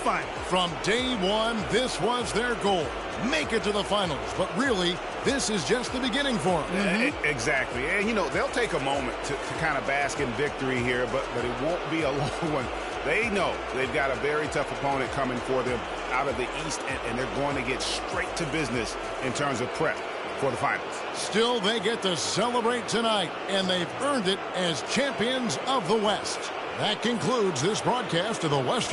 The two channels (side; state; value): both; identical; correlation 1.00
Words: From day one, this was their goal. Make it to the finals. But really, this is just the beginning for them. Exactly. And, you know, they'll take a moment to kind of bask in victory here, but it won't be a long one. They know they've got a very tough opponent coming for them out of the East, and they're going to get straight to business in terms of prep for the finals. Still, they get to celebrate tonight, and they've earned it as champions of the West. That concludes this broadcast of the